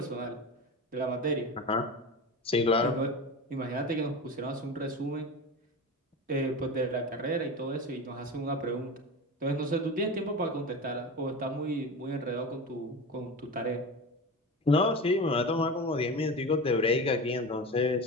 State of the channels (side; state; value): both; normal; correlation 0.27